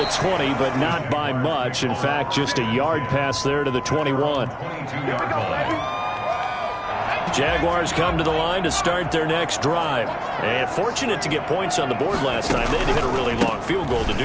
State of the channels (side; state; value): both; identical; correlation 1.00